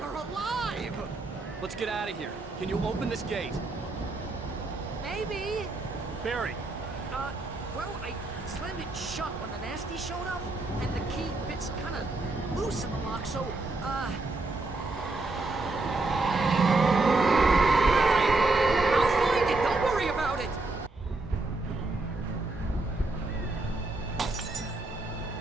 Let's get out of here. Can you open this gate? Maybe. Barry! Well, I slammed it shut when the nasty showed up, and the key fits kind of loose in the lock, so, Barry!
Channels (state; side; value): quieter; left; 3.2 dB